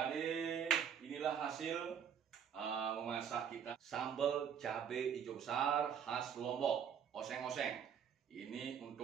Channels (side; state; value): left; quieter; 8.0 dB